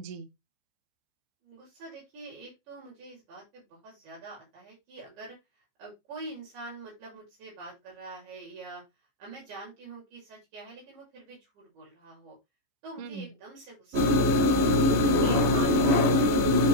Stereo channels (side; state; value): left; late; 14 ms